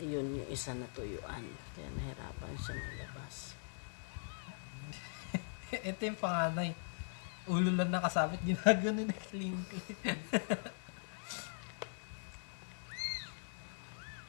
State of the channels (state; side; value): silent; right; digital silence